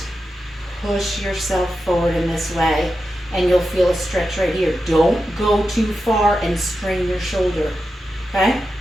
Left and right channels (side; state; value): both; normal; correlation 0.90